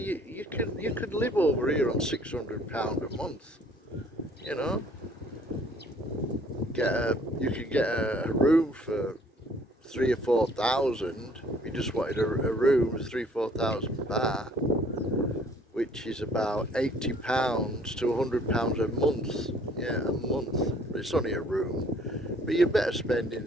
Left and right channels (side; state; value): both; normal; correlation 0.58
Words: could live over here on £600 a month. You could get a room for 3 or 4,000. If you just wanted a room, 3,000-4,000 baht, which is about £80 to £100 a month. Yeah, a month. But it's only a room. But you're better spending